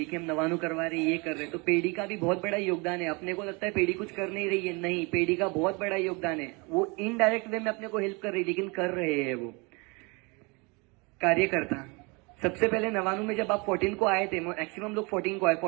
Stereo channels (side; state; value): left; quieter; 28.8 dB